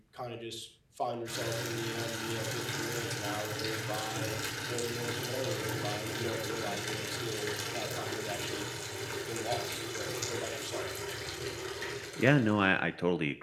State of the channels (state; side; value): identical; both; correlation 1.00